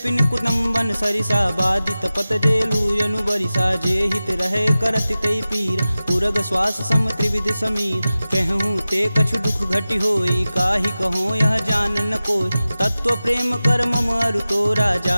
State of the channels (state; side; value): inverted; both; correlation -0.96